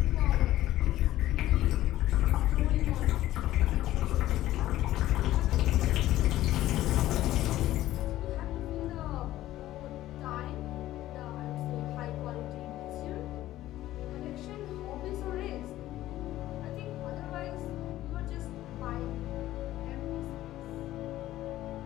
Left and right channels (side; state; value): right; quieter; 14.6 dB